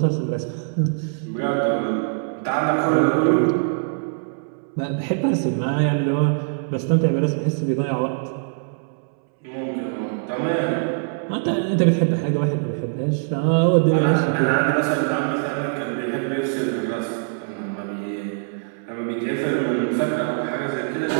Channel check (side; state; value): left; silent; 64 dB below the other